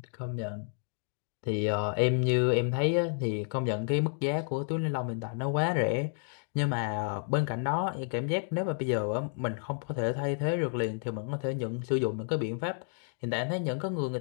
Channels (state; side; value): silent; right; 57 dB below the other